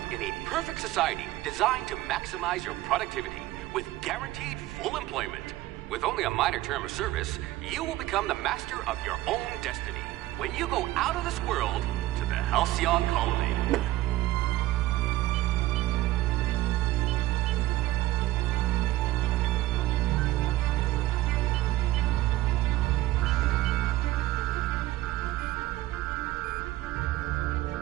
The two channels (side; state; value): left; quieter; 16.4 dB